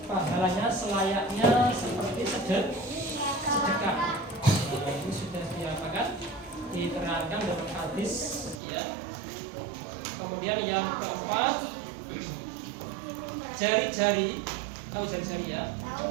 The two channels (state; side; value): drops out; left; at 8.6 s